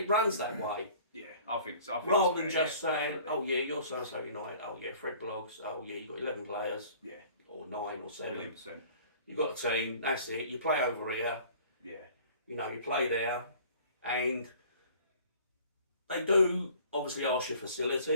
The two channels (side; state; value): both; inverted; correlation -0.49